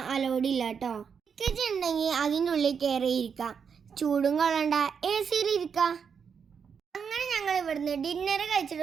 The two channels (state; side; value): quieter; left; 6.6 dB